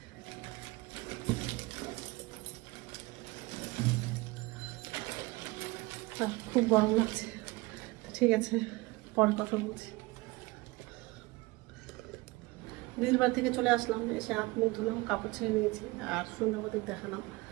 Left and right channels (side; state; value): left; quieter; 22.5 dB